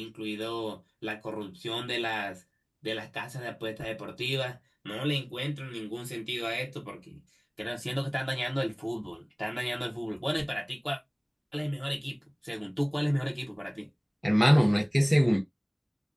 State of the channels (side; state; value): both; identical; correlation 1.00